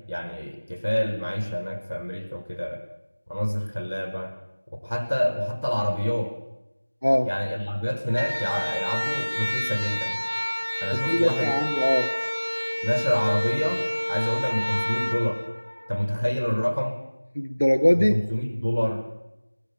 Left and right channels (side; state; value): both; inverted; correlation -1.00